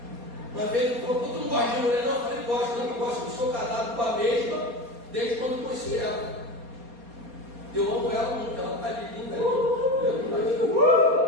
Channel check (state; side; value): late; left; 4.2 ms